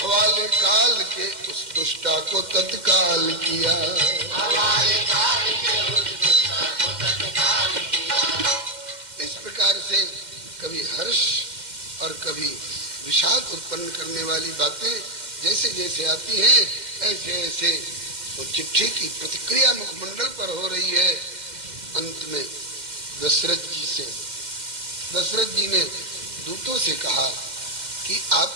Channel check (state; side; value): late; left; 2.1 ms